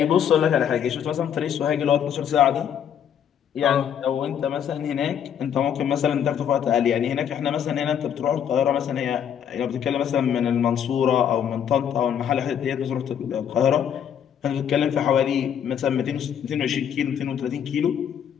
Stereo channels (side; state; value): right; quieter; 8.8 dB